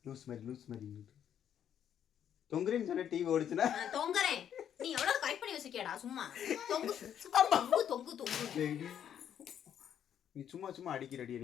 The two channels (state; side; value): quieter; right; 9.4 dB